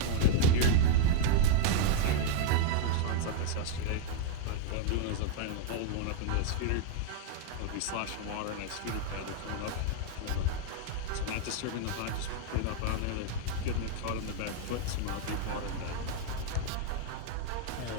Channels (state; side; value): different; both; correlation -0.01